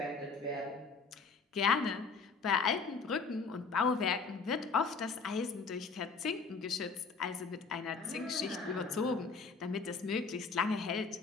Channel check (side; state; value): right; quieter; 4.7 dB